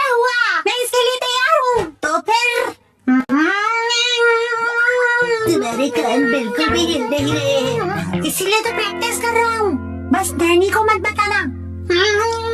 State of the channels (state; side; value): identical; both; correlation 1.00